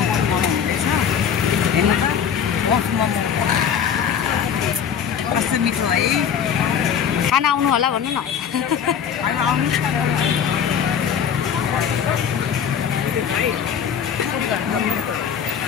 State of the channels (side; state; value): right; quieter; 7.9 dB